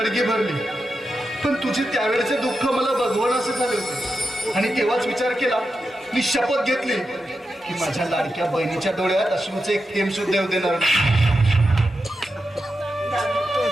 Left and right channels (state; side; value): normal; both; correlation 0.89